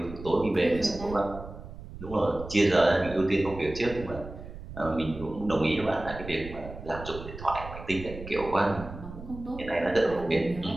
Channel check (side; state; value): right; noise; rumble, 13 dB below the sound